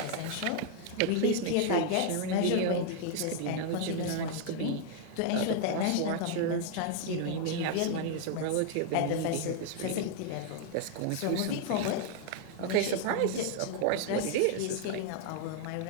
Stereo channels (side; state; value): both; different; correlation 0.00